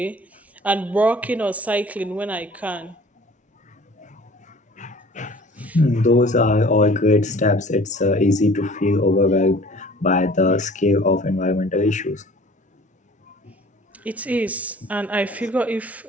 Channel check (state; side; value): normal; both; correlation 0.49